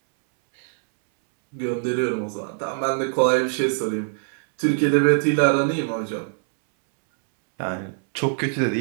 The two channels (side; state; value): left; silent; 63 dB below the other